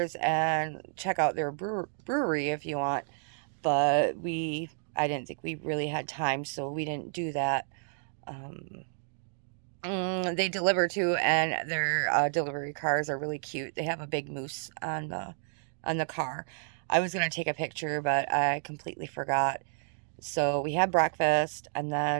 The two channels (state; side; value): silent; left; digital silence